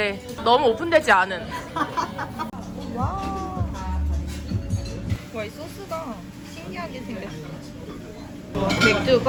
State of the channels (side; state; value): both; identical; correlation 1.00